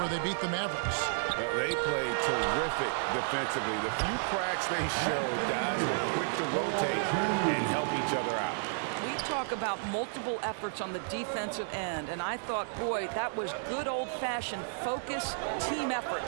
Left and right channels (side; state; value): left; silent; digital silence